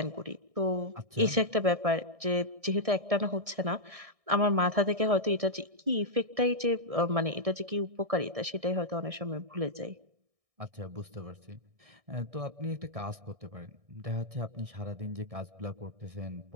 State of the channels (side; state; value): left; late; 1.6 ms